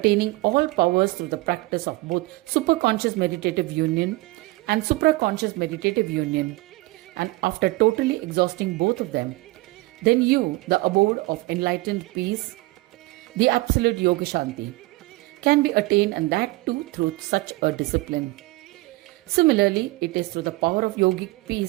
all powers through the practice of both superconscious meditative union and supraconscious meditative union, and after totally exhausting both of them, then you, the abode of enlightened peace, the absolute Yoga Shanti, can be attained, and that too through such a discipline. Similarly, it is through the power of yogic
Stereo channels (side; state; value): left; quieter; 21.3 dB